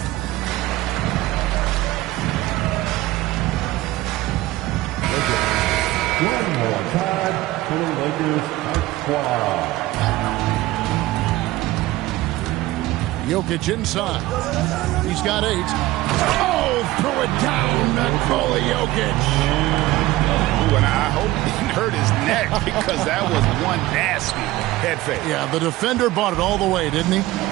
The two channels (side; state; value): left; quieter; 17.3 dB